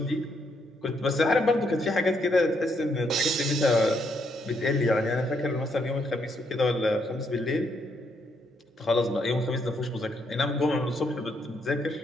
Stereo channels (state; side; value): normal; both; correlation 0.75